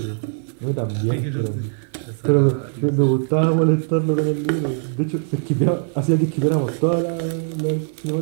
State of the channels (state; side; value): silent; left; 65 dB below the other